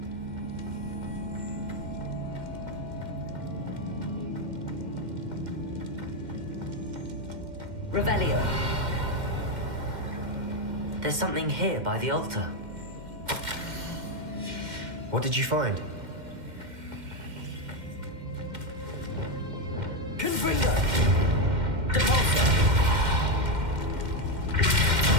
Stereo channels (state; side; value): late; left; 2.1 ms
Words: Revelio. There's something here by the altar. What did you find? Confringo! Depulsor!